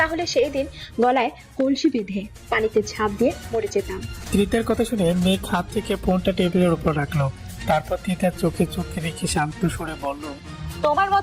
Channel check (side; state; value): both; identical; correlation 1.00